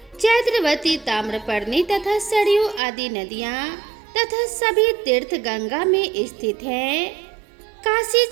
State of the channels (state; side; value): drops out; left; at 2.8 s